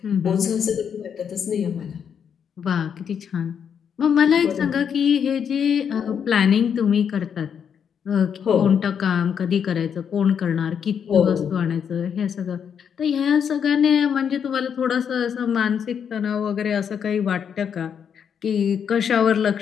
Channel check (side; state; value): right; quieter; 7.6 dB